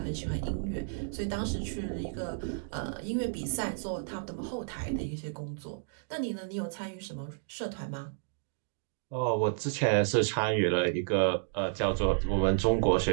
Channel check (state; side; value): silent; left; digital silence